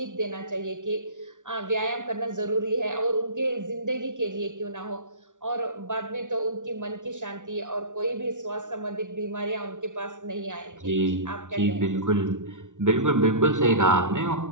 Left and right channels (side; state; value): left; late; 0.87 ms